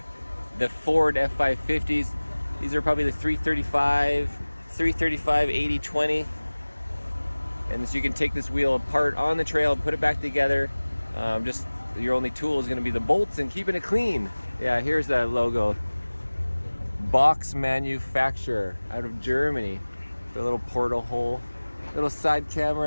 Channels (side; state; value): both; inverted; correlation -1.00